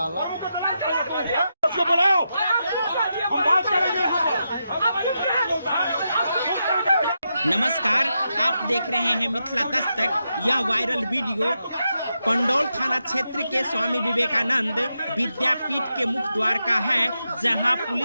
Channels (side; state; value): both; inverted; correlation -0.86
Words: उसको बुलाओ, हम बात करेंगे। नमस्कार, आप देख रहे हैं मिथिला दस्तक। यह वायरल वीडियो पंडौल थाना क्षेत्र के स्वामी विवेकानंद विद्यापीठ के मुख्य द्वार का है, जहां